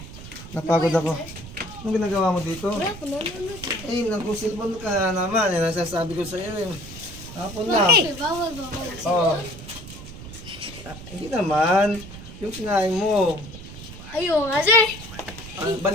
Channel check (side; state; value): right; noise; rumble, 14 dB below the sound